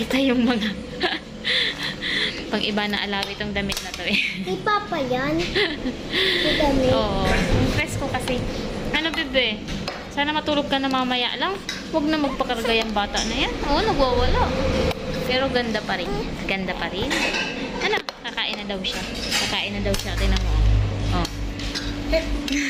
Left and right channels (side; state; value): both; identical; correlation 1.00